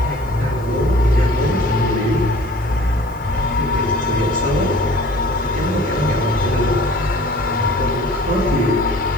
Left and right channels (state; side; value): noise; right; hiss, 26 dB below the sound